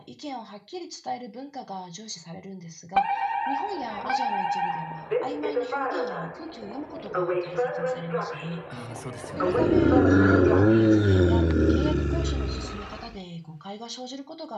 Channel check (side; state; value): both; identical; correlation 1.00